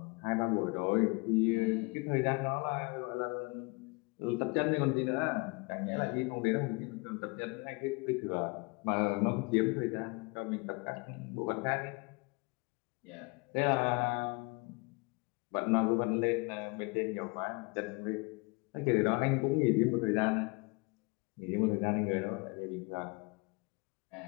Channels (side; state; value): right; quieter; 28.9 dB